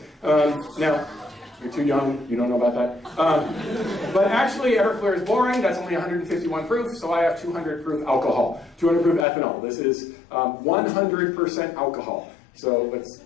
Now, you're too young, you don't know about that. But actually, Everclear is boring. That's only 151 proof, so I have 200 proof alcohol, 200 proof ethanol. This is 100% alcohol. So let's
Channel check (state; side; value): drops out; right; at 9.2 s